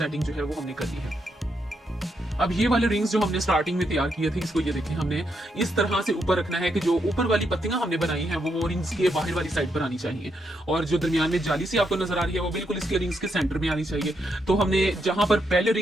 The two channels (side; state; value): both; normal; correlation 0.80